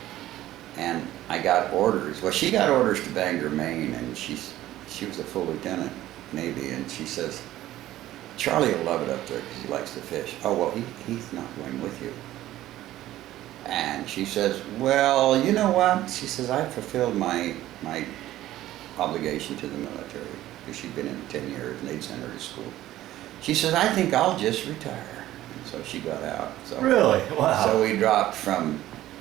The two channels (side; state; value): left; quieter; 14.4 dB